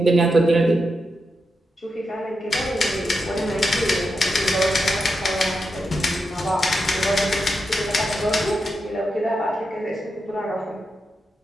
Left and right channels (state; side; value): normal; both; correlation 0.86